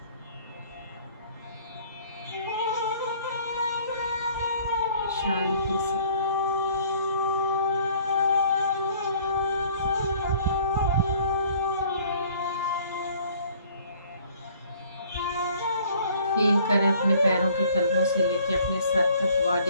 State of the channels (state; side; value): inverted; both; correlation -0.56